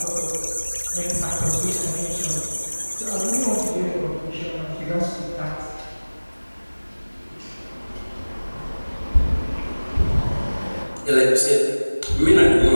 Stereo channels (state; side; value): inverted; both; correlation -1.00